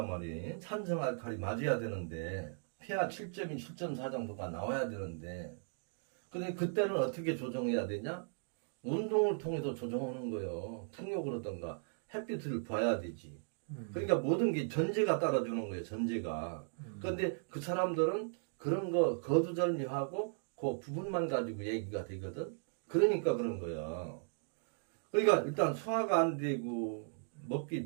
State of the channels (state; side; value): silent; left; digital silence